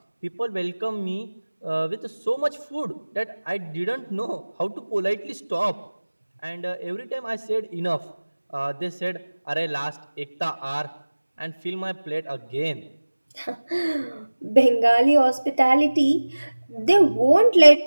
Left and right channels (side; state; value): both; inverted; correlation -1.00